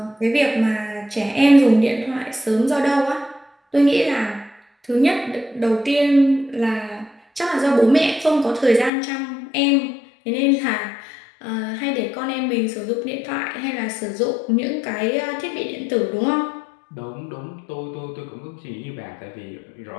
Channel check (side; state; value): right; drops out; at 8.9 s